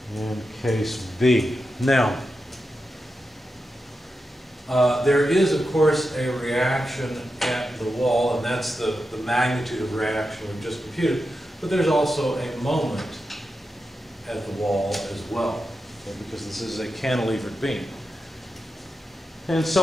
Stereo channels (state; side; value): normal; both; correlation 0.89